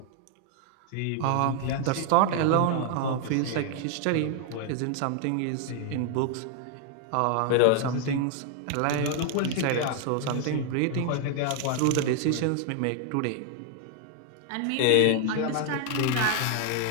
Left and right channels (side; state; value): both; different; correlation 0.00